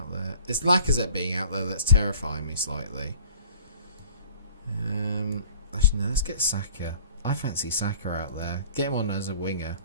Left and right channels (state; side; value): inverted; both; correlation -0.48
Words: there. It's Lacazette being out there that's terrifying me slightly. Actually, no, let's get Saka. I fancy Saka out there. Get him on as a winger.